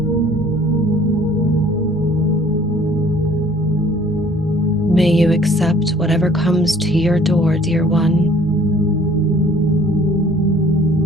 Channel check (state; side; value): normal; both; correlation 0.54